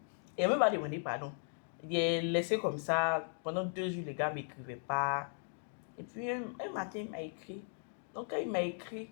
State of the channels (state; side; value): silent; right; digital silence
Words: Il n'a même pas demandé pardon. Il est laissé comme ça. Pendant 2 jours, les gars ne m'écrivaient pas. Et puis un matin, il m'a écrit. Donc quand il m'a écrit,